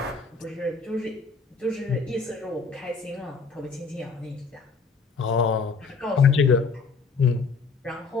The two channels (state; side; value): quieter; right; 4.7 dB